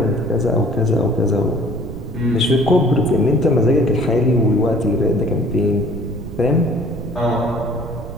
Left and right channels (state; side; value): noise; right; rumble, 10 dB below the sound